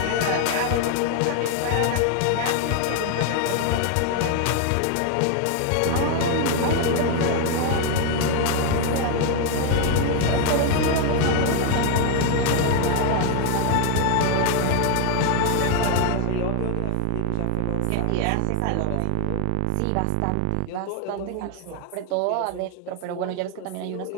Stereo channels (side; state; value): both; different; correlation 0.00